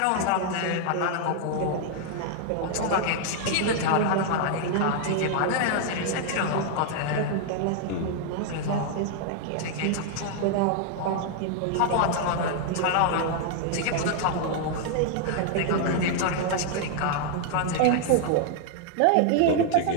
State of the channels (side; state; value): both; different; correlation 0.00